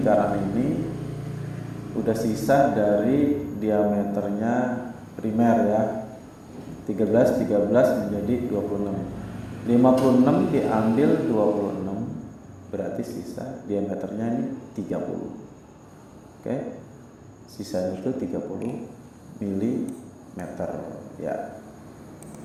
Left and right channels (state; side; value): identical; both; correlation 1.00